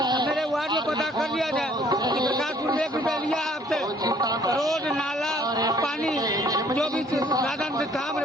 मेरे वार्ड में पता कर लिया जाए कि प्रकाशपुर में 1 रुपया लिया है आपसे, रोड नाला पानी जो भी साधन से था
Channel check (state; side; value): normal; both; correlation 0.60